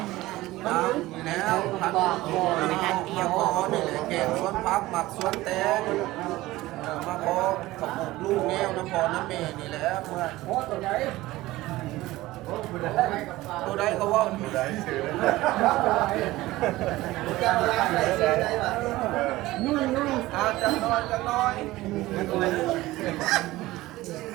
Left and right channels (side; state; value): left; quieter; 17.9 dB